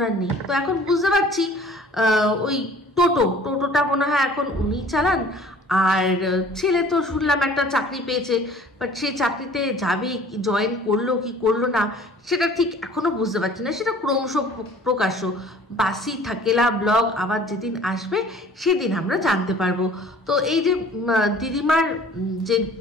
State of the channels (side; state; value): both; normal; correlation 0.50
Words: নেই। তো এখন বুঝতে পারছি ওই টোটোটা মনে হয় এখন উনি চালান। আর ছেলে তো শুনলাম একটা চাকরি পেয়েছে, বাট সেই চাকরিতে যাবে, জয়েন করলো কি করলো না সেটা ঠিক এখনো বুঝতে পারছি না। সেটা ক্রমশ প্রকাশ্য, বাসি থাকেলা ব্লগ আবার যেদিন আসবে সেদিন আমরা জানতে পারবো। তো এই যে দিদিমার যে